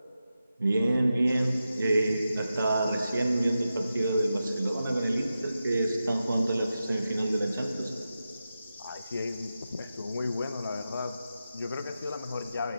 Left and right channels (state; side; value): inverted; both; correlation -0.91